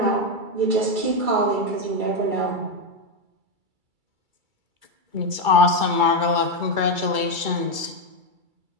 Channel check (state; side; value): late; left; 2.3 ms